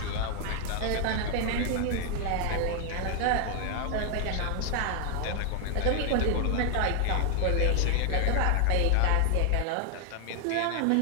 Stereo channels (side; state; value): both; different; correlation 0.00